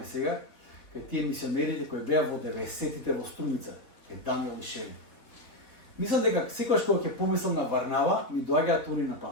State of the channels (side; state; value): right; late; 3.5 ms